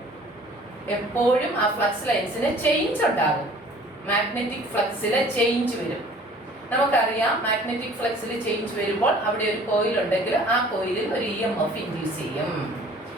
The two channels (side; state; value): both; normal; correlation 0.51